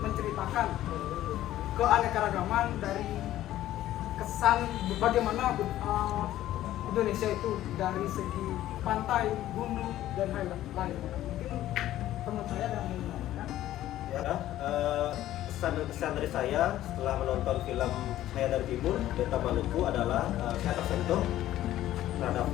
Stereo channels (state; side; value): quieter; right; 13.7 dB